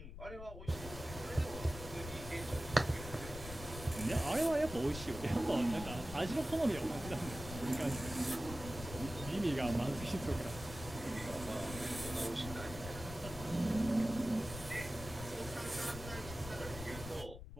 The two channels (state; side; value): noise; left; rumble, 11 dB below the sound